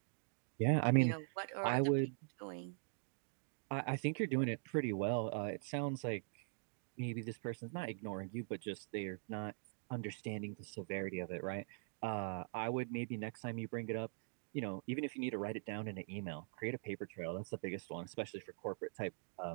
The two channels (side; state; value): left; silent; digital silence